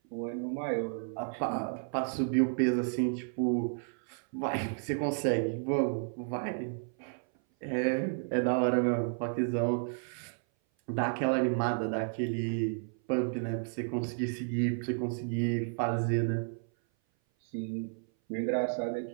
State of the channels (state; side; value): silent; left; 56 dB below the other